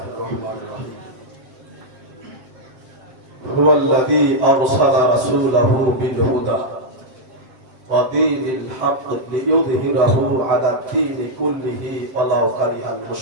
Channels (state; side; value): late; left; 7.6 ms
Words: الرحمن الرحيم هو الذي أرسل رسوله بالهدى ودين الحق ليظهره على الدين كله ولو كره